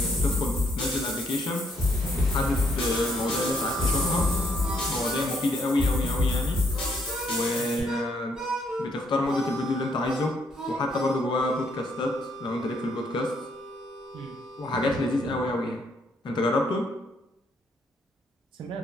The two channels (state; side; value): normal; both; correlation 0.71